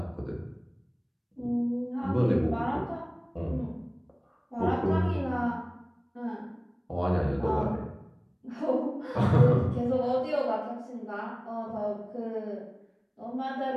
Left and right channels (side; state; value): both; identical; correlation 1.00